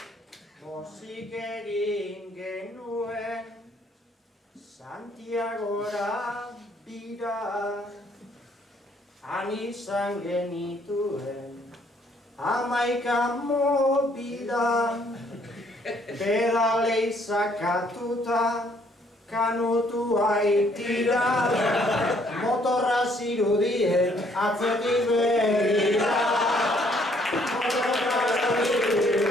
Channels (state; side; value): normal; both; correlation 0.65